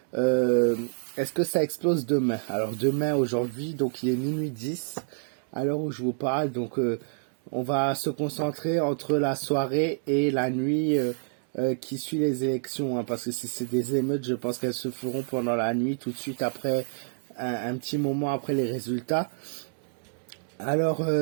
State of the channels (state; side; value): silent; left; 60 dB below the other